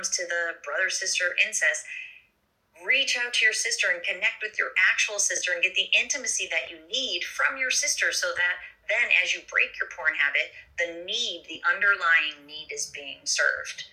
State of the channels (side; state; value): both; identical; correlation 1.00